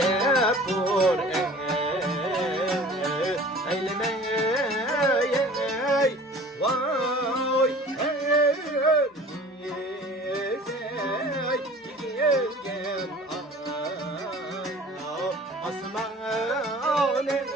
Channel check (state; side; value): normal; both; correlation 0.45